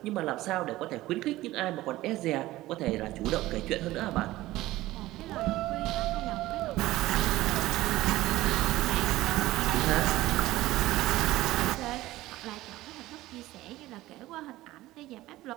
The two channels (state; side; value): quieter; left; 17.0 dB